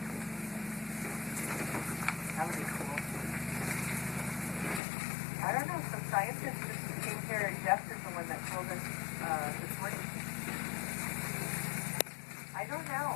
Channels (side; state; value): right; drops out; at 4.8 s